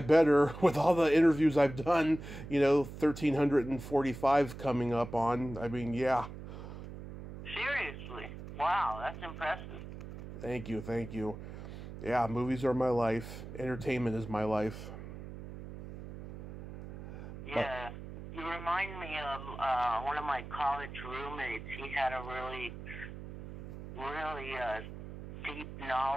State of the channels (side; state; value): right; noise; hum, 11 dB below the sound